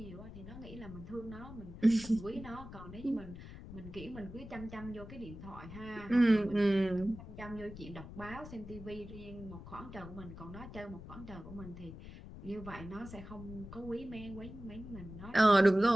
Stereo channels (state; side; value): noise; left; rumble, 13 dB below the sound